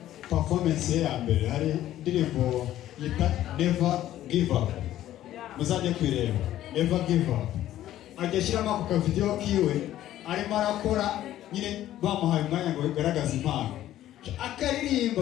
performance ya mbere, hari indirimbo yita Never Give Up, muzajye kwireba Never Give Up. Ajya shyiramo ako video kiwe arimo arakora nyine bamuhaye umwanya ngo bigaragaze impano,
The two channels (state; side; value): quieter; right; 13.1 dB